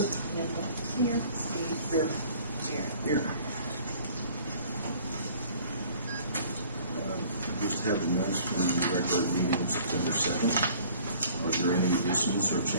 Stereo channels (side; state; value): both; inverted; correlation -0.52